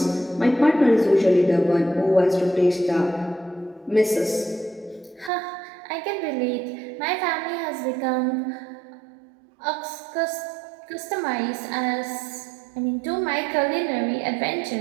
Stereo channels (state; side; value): drops out; left; at 5.3 s